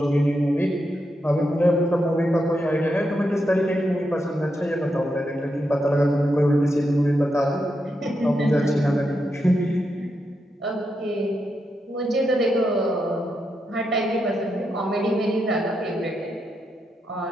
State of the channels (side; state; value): both; normal; correlation 0.84